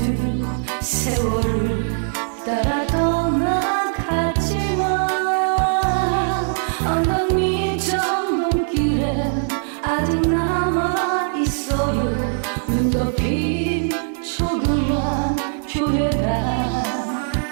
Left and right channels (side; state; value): left; silent; 65 dB below the other